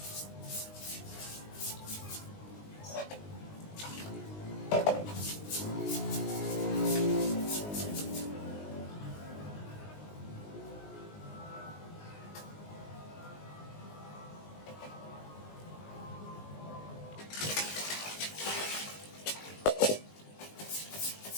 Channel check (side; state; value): right; late; 19 ms